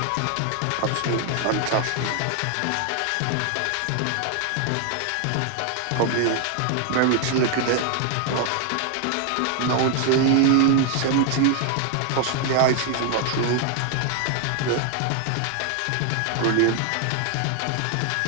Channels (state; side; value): different; both; correlation 0.00